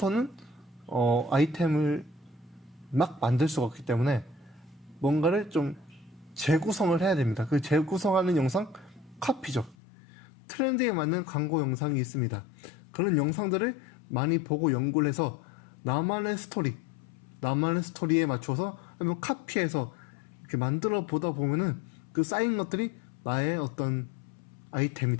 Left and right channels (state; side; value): drops out; right; at 9.8 s